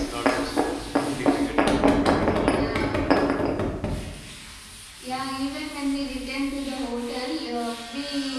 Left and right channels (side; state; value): both; identical; correlation 1.00